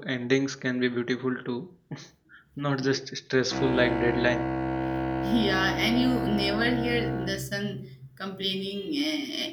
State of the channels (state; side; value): identical; both; correlation 1.00